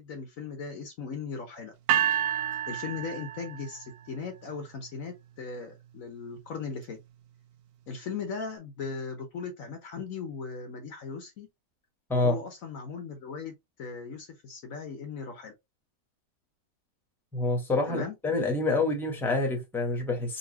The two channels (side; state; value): both; normal; correlation 0.05